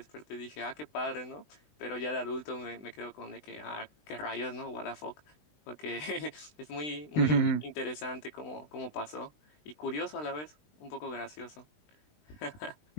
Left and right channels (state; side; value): late; right; 20 ms